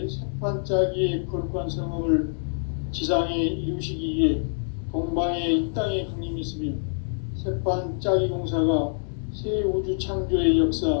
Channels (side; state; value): right; silent; digital silence